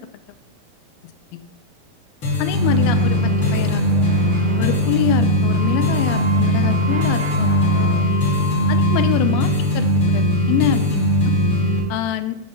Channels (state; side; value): normal; both; correlation -0.03